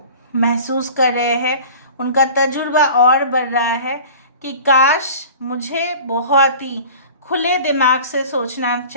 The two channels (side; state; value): both; inverted; correlation -0.41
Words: महसूस कर रहे हैं, उनका तजुर्बा और बढ़ रहा है कि काश मुझे बहुत ही खुले दिमाग से सोचना